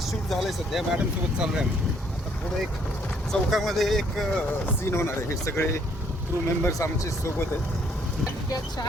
झालंय सध्या, मॅडम सोबत चालू आहे आम्ही. आता पुढे एक चौकामध्ये एक सीन होणार आहे. हे सगळे क्रू मेंबर्स आमचे सोबत आहेत.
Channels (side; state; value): both; normal; correlation 0.66